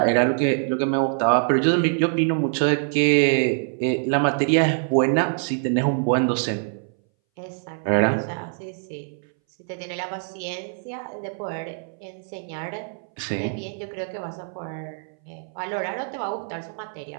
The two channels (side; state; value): left; silent; 61 dB below the other